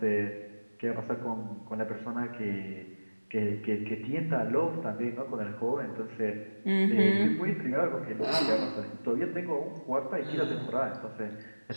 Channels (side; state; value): both; inverted; correlation -1.00